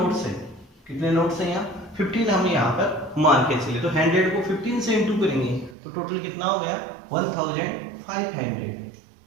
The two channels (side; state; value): left; drops out; at 5.8 s